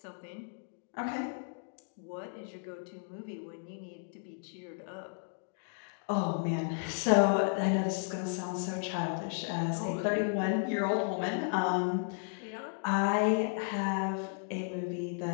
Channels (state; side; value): silent; right; digital silence